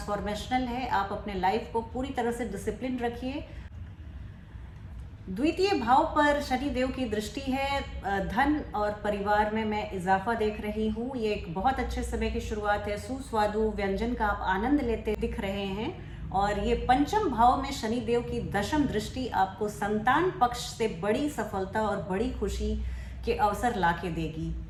है। आप अपने लाइफ को पूरी तरह से डिसिप्लिन रखिए। द्वितीय भाव पर शनि देव की दृष्टि है। धन और परिवार में मैं इजाफा देख रही हूँ। ये एक बहुत अच्छे समय की शुरुआत है। सुस्वादु व्यंजन का आप आनंद लेते दिख रहे हैं। और ये पंचम भाव में शनि देव की दशम दृष्टि आपको संतान पक्ष से बड़ी सफलता और बड़ी खुशी के अवसर ला के देगी।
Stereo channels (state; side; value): identical; both; correlation 1.00